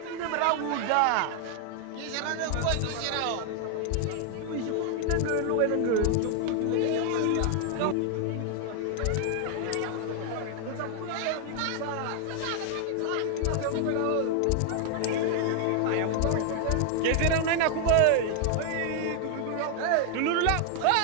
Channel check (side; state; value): both; different; correlation 0.00